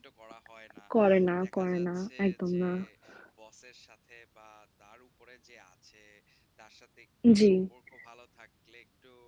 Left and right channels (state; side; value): identical; both; correlation 1.00